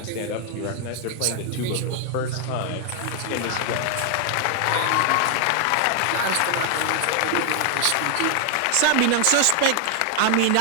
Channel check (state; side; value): different; both; correlation 0.00